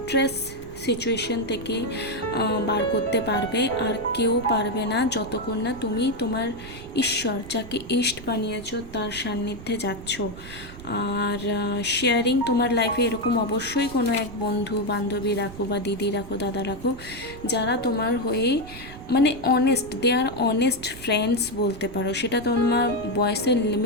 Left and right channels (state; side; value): noise; right; rumble, 15 dB below the sound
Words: সিচুয়েশন থেকে বার করতে পারবে, আর কেউ পারবে না যতক্ষণ না তুমি তোমার ঈশ্বর, যাকে ইষ্ট বানিয়েছো, তার সান্নিধ্যে যাচ্ছ। আর শেয়ারিং তোমার লাইফে এরকম অবশ্যই কোনো এক বন্ধু বান্ধবী রাখো, বা দিদি রাখো, দাদা রাখো, যারা তোমার হয়ে মানে honest, they are honest friends বলতে পারো। সেটা তোমার বয়সের